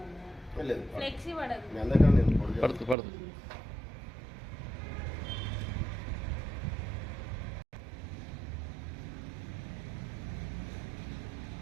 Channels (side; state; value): left; drops out; at 3.0 s